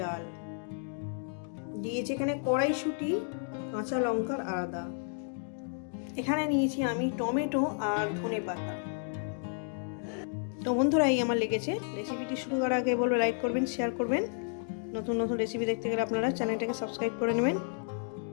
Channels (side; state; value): right; silent; 57 dB below the other